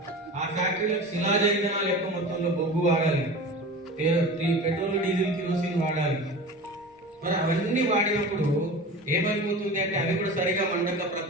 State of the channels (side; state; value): both; normal; correlation 0.34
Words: ఆ ఫ్యాక్టరీలకు శిలాజ ఇంధనాలు ఎక్కువ మొత్తంలో బొగ్గు వాడాలి, పెట్రోల్, డీజిల్, కిరోసిన్ వాడాలి. మరి అవన్నీ వాడినప్పుడు ఏమైపోతుంది అంటే అవి కూడా సరిగా మండక